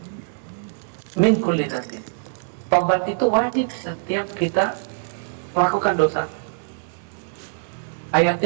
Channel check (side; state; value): left; silent; digital silence